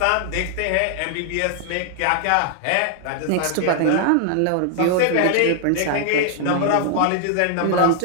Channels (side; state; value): both; different; correlation 0.00